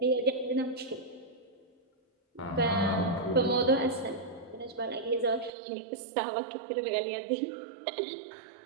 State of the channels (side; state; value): left; drops out; at 5.5 s